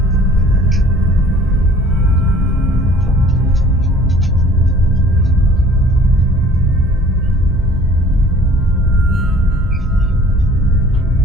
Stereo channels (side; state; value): both; normal; correlation 0.52